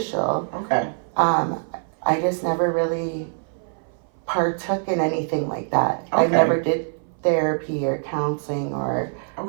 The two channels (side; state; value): left; silent; 59 dB below the other